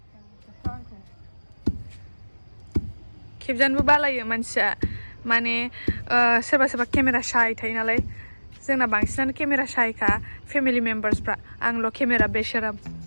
खेबजानोबो बालायो मानसिया माने सोरबा केमेरा शाय थायो नालाय जोंना बांसिनानो केमेरा शायखा फेमिलि मेम्बार्सफ्रा आंल' केमेरा बेशराम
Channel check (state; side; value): inverted; both; correlation -1.00